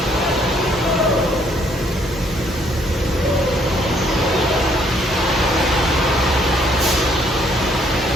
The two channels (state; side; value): normal; both; correlation 0.66